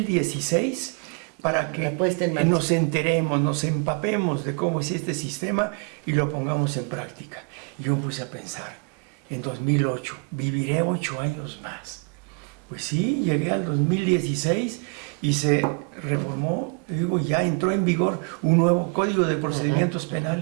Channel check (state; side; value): quieter; left; 36.8 dB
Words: para que La puesta en marcha. nos enteremos, nos empapemos de cómo es este sistema y lo pongamos en práctica. Y yo me puse a pensar, en 2008, viviré 8 años más. Pues sí, llegué al 2016 y se reformó, te digo, ya entró en vigor un nuevo Código de Procedimientos